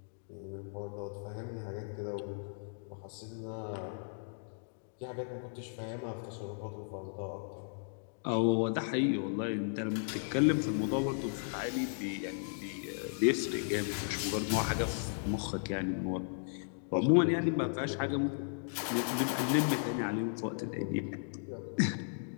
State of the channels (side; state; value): right; silent; digital silence